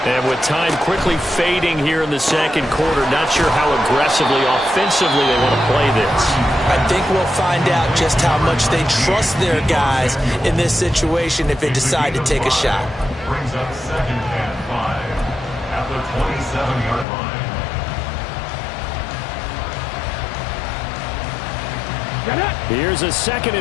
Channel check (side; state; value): right; drops out; at 17.1 s